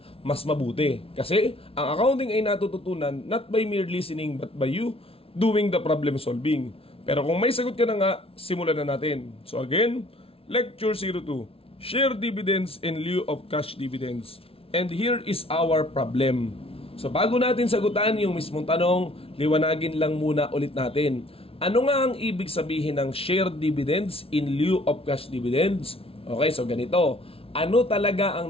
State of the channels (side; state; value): right; late; 0.27 ms